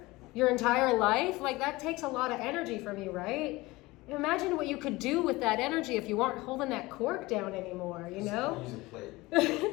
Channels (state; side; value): quieter; right; 20.9 dB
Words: your entire life, like that takes a lot of energy from you, right? Imagine what you could do with that energy if you aren't holding that cork down anymore, you know? Use a plate.